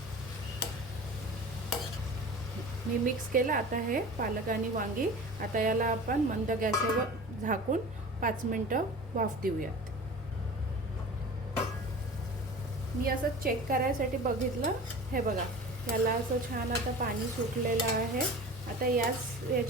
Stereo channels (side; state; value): both; normal; correlation 0.38